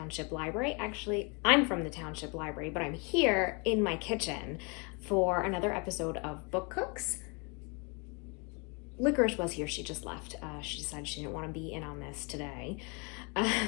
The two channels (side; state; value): right; quieter; 32.4 dB